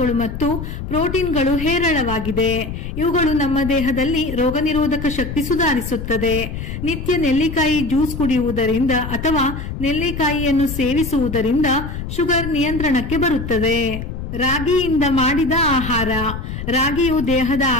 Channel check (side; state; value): left; noise; rumble, 7 dB below the sound